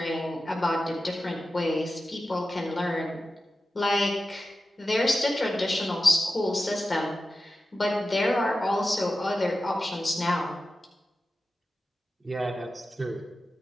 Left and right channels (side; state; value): both; normal; correlation 0.93